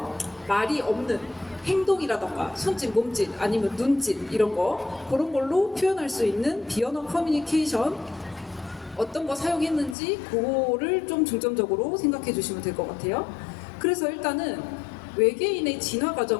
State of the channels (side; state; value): right; drops out; at 10.0 s